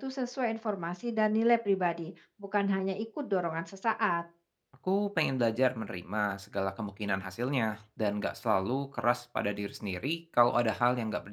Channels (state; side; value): identical; both; correlation 1.00